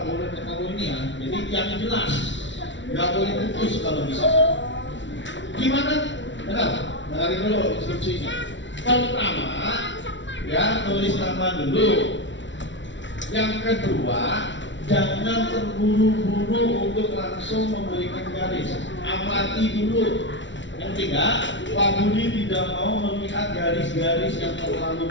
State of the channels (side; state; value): right; late; 0.54 ms